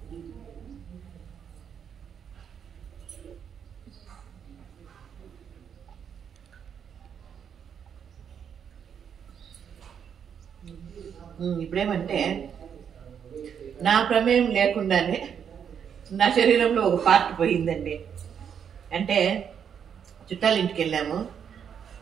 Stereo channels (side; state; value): left; quieter; 7.9 dB